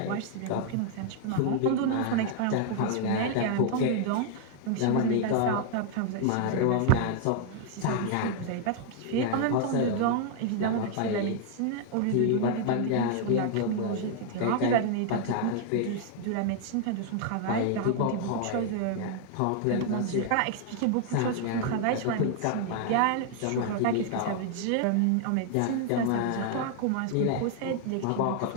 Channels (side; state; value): both; different; correlation 0.00